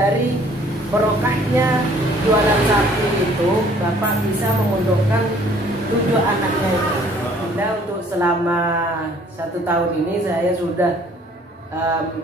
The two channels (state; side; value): normal; both; correlation 0.57